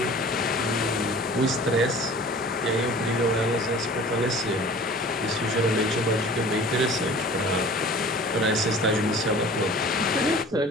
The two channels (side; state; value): both; normal; correlation 0.44